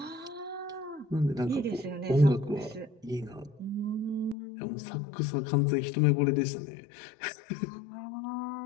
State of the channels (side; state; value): right; drops out; at 4.4 s